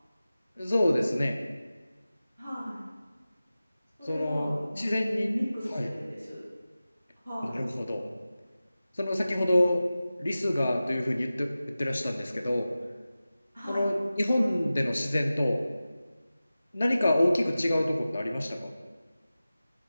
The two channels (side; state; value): both; inverted; correlation -0.96